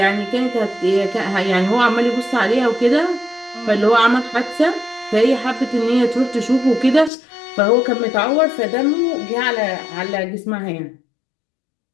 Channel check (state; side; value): drops out; right; at 7.1 s